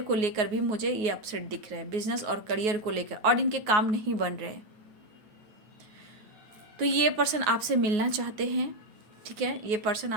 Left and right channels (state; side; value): late; left; 9.5 ms